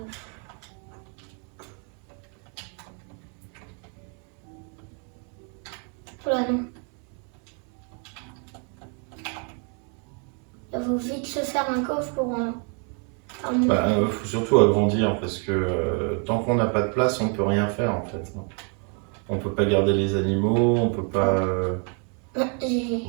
Voilà, non. Il faut vite se faire un coffre pour un Bah, faut surtout agrandir parce que tant qu'on n'a pas de place, on peut rien faire en fait. On peut pas garder les animaux, on peut pas, J'ai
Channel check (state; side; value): quieter; left; 39.1 dB